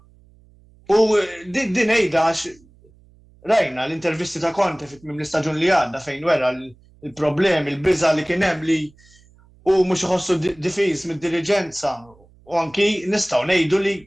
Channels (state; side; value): noise; right; hum, 28 dB below the sound